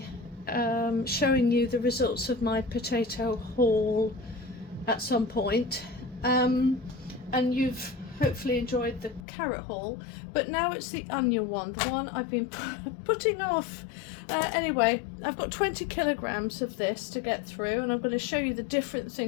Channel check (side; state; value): right; drops out; at 9.2 s